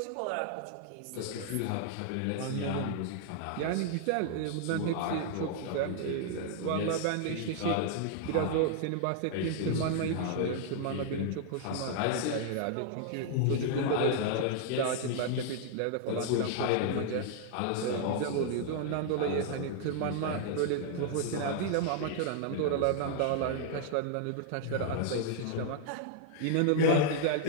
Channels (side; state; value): both; different; correlation -0.01